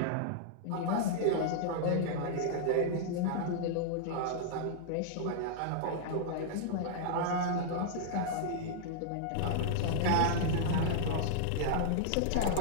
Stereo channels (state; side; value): different; both; correlation -0.02